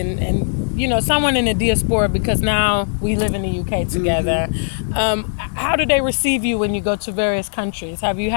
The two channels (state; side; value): silent; right; 67 dB below the other